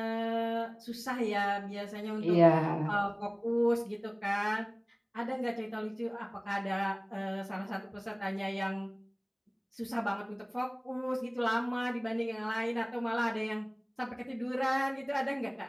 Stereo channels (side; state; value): both; identical; correlation 1.00